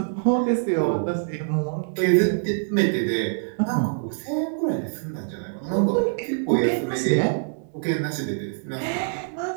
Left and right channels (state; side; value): silent; left; 62 dB below the other